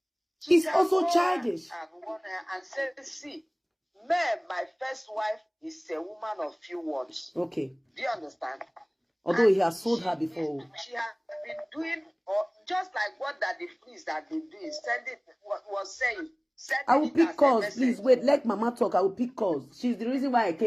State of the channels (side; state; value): both; identical; correlation 1.00